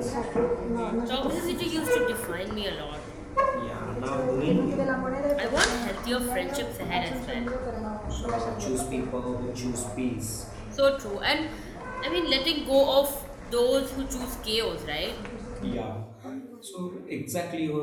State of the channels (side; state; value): both; identical; correlation 1.00